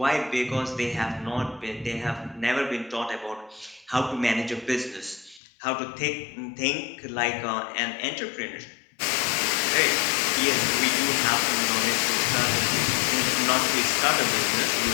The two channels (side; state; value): right; drops out; at 5.4 s